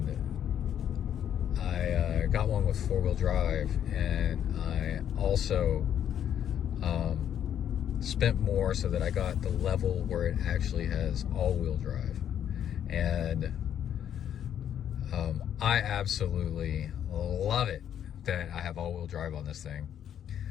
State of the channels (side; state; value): right; quieter; 9.7 dB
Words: I got one with four-wheel drive, and I also spent more so that I got the level where it actually has all-wheel drive. And I absolutely love it that I have all-wheel drive on this thing,